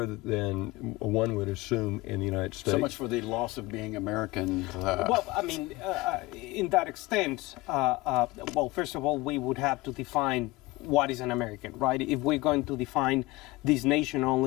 than one would assume in the United States. So much for the loss of being American. Well, I mean, in that extent, well, first of all, we would have to define what is an American, right? If we're going to define this nation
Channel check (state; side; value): quieter; right; 21.0 dB